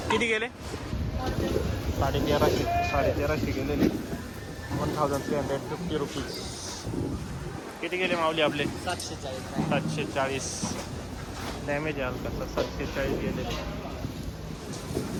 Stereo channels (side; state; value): both; identical; correlation 1.00